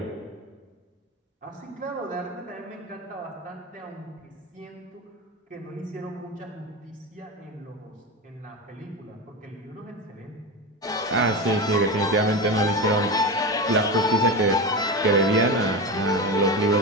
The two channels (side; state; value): both; normal; correlation 0.21